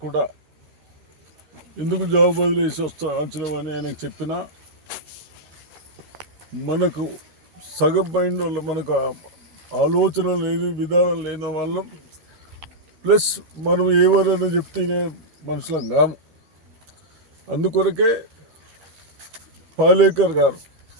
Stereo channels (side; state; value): left; late; 13 ms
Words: కూడా ఎందుకు జాబ్ వదిలేసి వచ్చినామని ఆయనకు చెప్పినా మనకు సగం మైండ్ వల్ల మనకు ఆలోచన లేని విధానం లేని వాళ్ళం, ప్లస్ మనం ఎవరైనా చెప్తేనే మనుషులం కాము. అందుకొరకే పాలేకర్ గారు